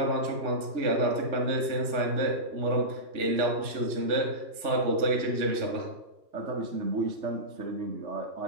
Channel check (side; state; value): left; late; 3.3 ms